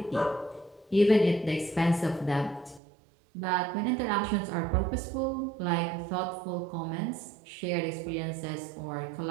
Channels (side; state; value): left; drops out; at 2.8 s